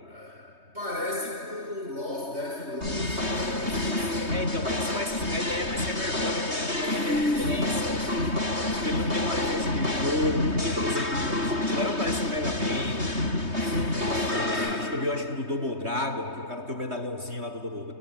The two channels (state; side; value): late; left; 3.2 ms